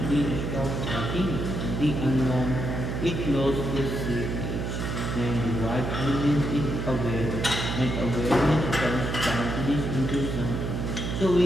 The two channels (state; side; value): noise; right; hum, 3 dB below the sound